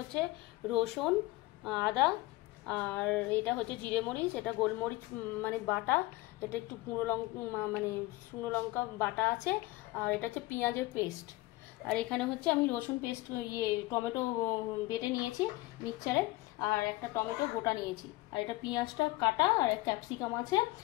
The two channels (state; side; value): quieter; right; 20.0 dB